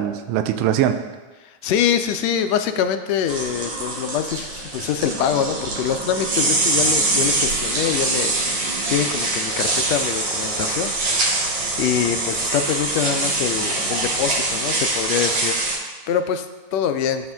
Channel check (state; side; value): late; left; 9.5 ms